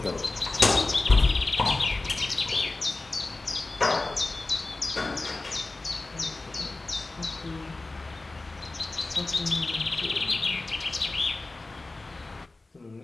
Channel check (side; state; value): right; quieter; 3.2 dB